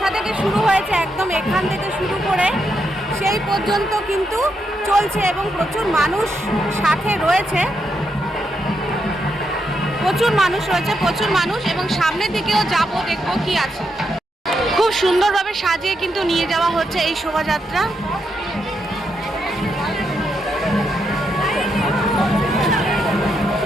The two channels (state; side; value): normal; both; correlation 0.81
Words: থেকে শুরু হয়েছে, একদম এখান থেকে শুরু করে সেই পর্যন্ত কিন্তু চলছে এবং প্রচুর মানুষ সাথে রয়েছে, প্রচুর মানুষ এবং সামনের দিকেও যাব, দেখবো কি আছে। খুব সুন্দরভাবে সাজিয়ে কিন্তু নিয়ে যাওয়া হচ্ছে এই শোভাযাত্রা।